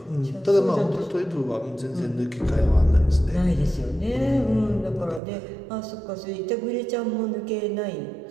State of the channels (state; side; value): drops out; left; at 5.2 s